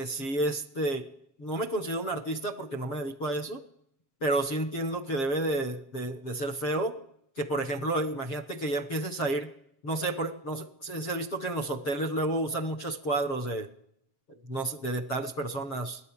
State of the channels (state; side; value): late; right; 7.4 ms